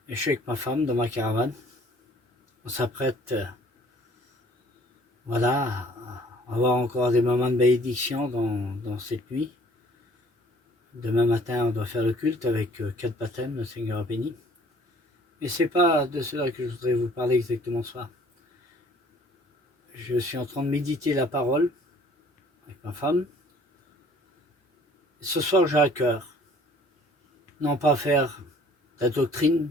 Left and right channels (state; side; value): normal; both; correlation 0.55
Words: Et je suis avec ma femme dans ma caravane. On s'apprête, voilà, à avoir encore des moments de bénédiction dans cette nuit. Demain matin, on doit faire le culte avec 4 baptêmes, le Seigneur a béni. Mais c'est pas de cela que je voudrais vous parler exactement ce soir. Je suis en train de méditer la parole avec ma femme. Ce soir, j'ai à cœur, non pas faire de la doctrine,